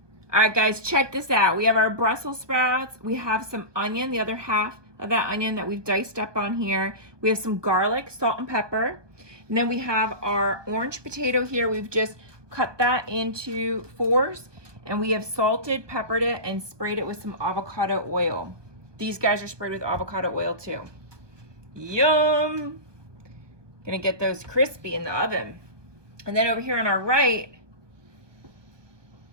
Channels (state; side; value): late; left; 1.2 ms